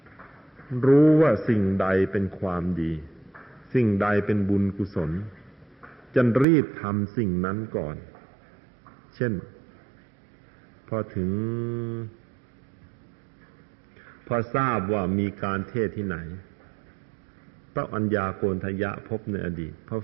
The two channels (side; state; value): left; drops out; at 6.5 s